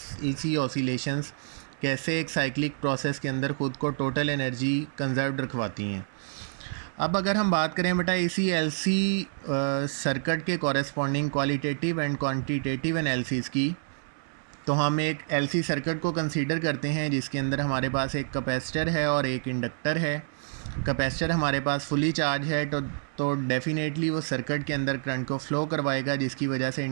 ऑसिलेशंस कैसे एक साइक्लिक प्रोसेस के अंदर ख़ुद को टोटल एनर्जी कंजर्व्ड रखवाती हैं। अब अगर हम बात करें बेटा इसी एलसी सर्किट के corresponding qualitative and quantitative analysis की, तो हम एक एलसी सर्किट को कंसीडर करते हैं जिसके अंदर हमारे पास एक कैपेसिटर है और एक इंडक्टर है। कैपेसिटर हमारे पास फुली चार्ज है तो डेफिनेटली वो सर्किट के अंदर करंट को फ्लो करवाएगा, जिसकी वजह से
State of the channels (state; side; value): silent; left; 59 dB below the other